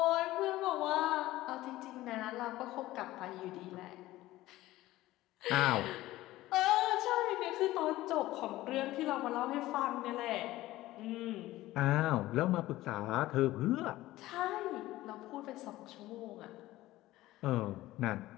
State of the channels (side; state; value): right; quieter; 16.6 dB